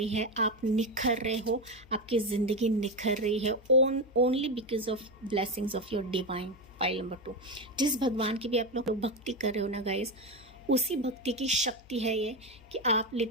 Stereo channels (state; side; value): noise; left; hum, 23 dB below the sound